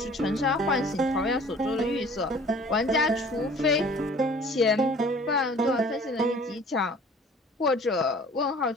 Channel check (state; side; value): normal; both; correlation 0.50